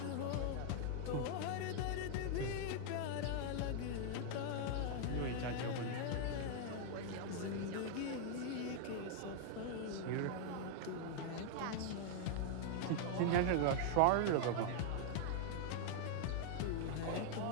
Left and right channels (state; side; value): different; both; correlation 0.00